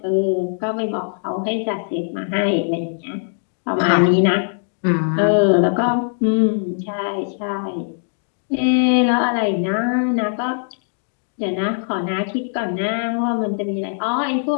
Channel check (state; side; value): silent; right; digital silence